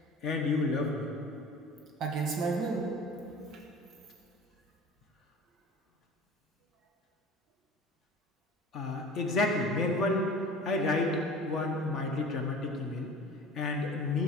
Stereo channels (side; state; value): both; normal; correlation 0.41